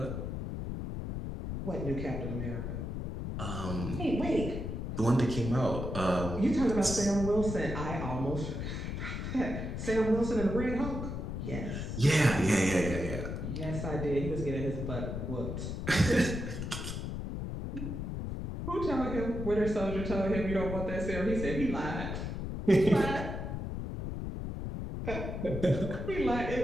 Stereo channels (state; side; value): noise; left; rumble, 4 dB below the sound